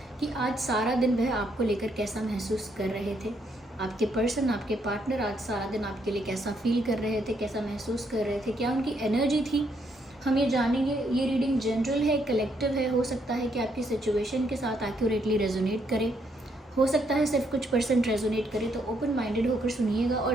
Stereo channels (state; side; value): normal; both; correlation 0.74